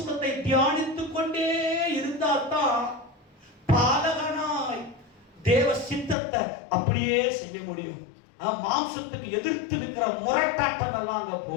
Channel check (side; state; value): right; drops out; at 6.2 s